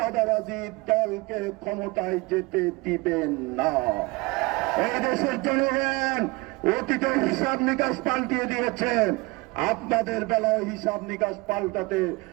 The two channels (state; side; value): quieter; left; 23.9 dB